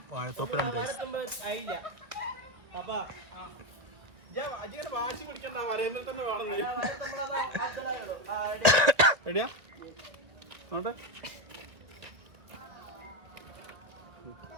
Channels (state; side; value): late; left; 1.9 ms